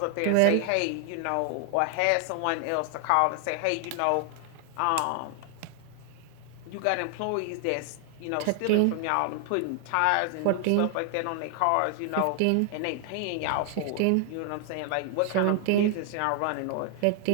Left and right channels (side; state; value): both; different; correlation 0.00